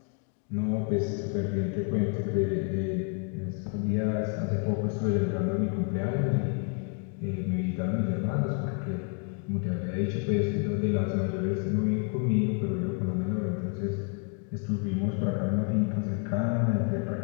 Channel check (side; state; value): right; quieter; 36.6 dB